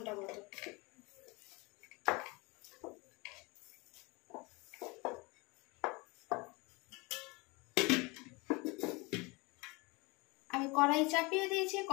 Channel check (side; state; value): right; quieter; 26.4 dB